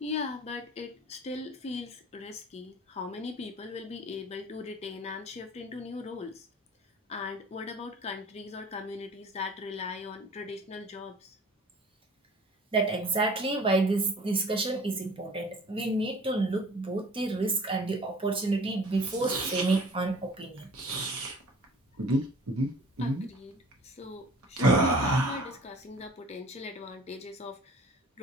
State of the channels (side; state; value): both; normal; correlation 0.47